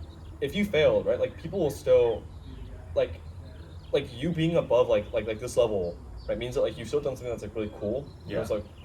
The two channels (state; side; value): identical; both; correlation 1.00